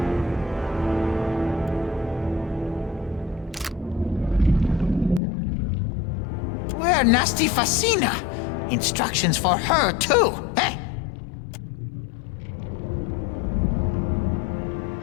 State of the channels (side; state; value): right; drops out; at 5.2 s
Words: Where Nasty Facina? Instructions for her, too, eh?